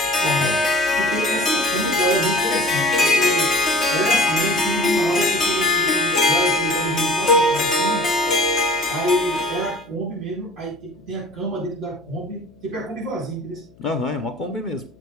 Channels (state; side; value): noise; left; hum, 28 dB below the sound